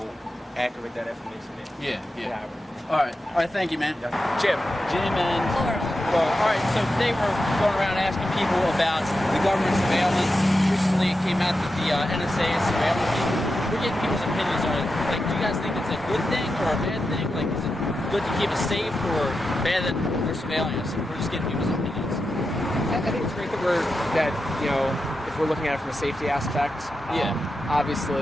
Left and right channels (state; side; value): normal; both; correlation 0.89